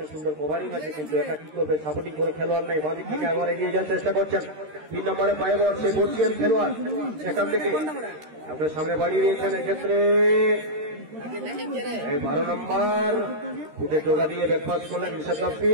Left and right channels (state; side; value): late; left; 13 ms